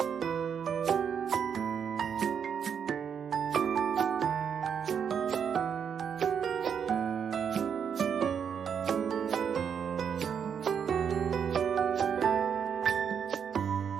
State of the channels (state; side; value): quieter; left; 7.4 dB